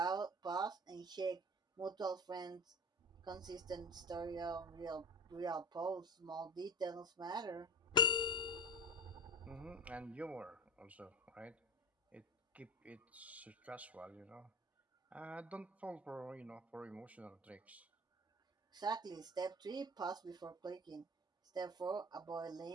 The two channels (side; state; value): both; normal; correlation 0.34